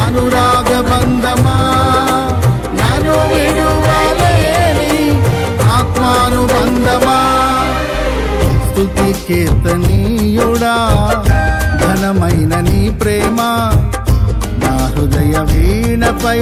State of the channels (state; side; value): identical; both; correlation 1.00